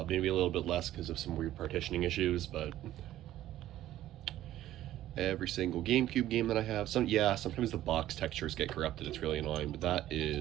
Maybe a little bit less because of some weird partitioning issues, but every single GameCube game that I have, sometimes the box textures get corrupted. It's really annoying, but that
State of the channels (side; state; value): left; quieter; 13.6 dB